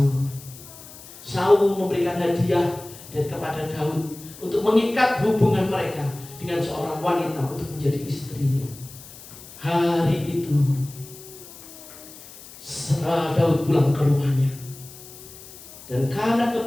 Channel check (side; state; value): left; noise; hiss, 17 dB below the sound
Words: Saul memberikan hadiah kepada Daud untuk mengikat hubungan mereka dengan seorang wanita untuk menjadi istrinya. Hari itu Daud pulang ke rumahnya, dan karena